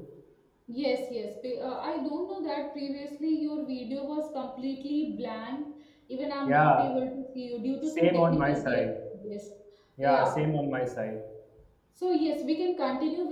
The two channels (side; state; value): both; identical; correlation 1.00